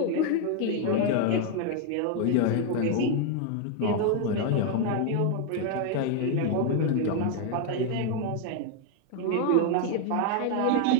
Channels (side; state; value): both; different; correlation 0.01